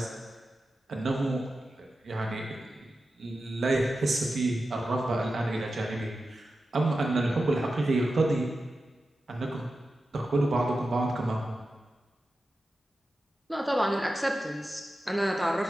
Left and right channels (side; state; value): both; normal; correlation 0.92